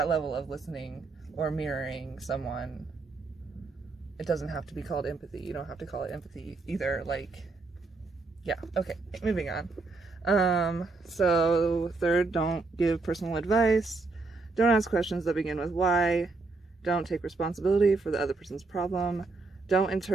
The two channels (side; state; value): left; quieter; 3.7 dB